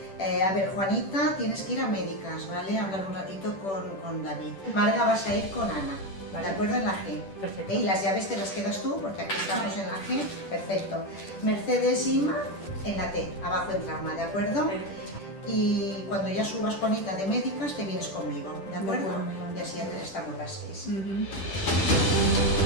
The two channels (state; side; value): late; right; 10 ms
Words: A ver, Juanita, tienes que ir a médicas, ¿vale? Hablar un ratito con David. Marga, vas a ir con Ana, Vale. ¿de acuerdo? En la G. Perfecto. Y las llaves te las quedas tú, porque aquí estamos en la G. Perfecto. Mercedes, Inma, en la T, abajo en trauma, ¿de acuerdo? Y cuando ya subas, Juanita, de médicas, te vienes conmigo, ¿de acuerdo? Vale. Y así ya estamos las 6.